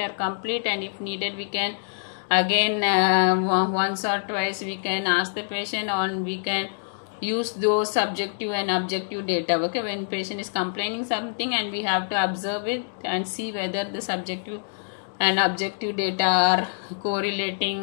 complete, and if needed we can again once or twice we can ask the patient, and we can use those subjective and objective data. Okay, when patient is complaining something, and we have to observe it and see whether the subjective and objective data are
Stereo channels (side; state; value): right; silent; digital silence